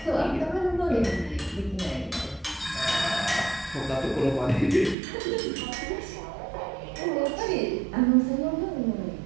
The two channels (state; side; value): drops out; left; at 5.0 s